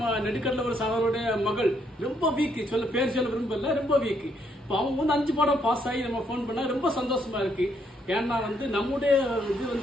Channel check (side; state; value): both; normal; correlation 0.73